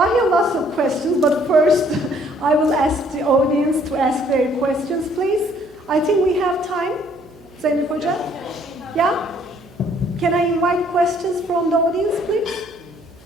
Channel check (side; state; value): right; noise; hum, 26 dB below the sound